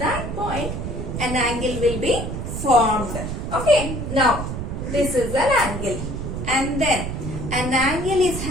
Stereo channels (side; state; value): right; noise; rumble, 5 dB below the sound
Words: point, an angle will be formed. Okay. Now, this is an angle. And then, an angle is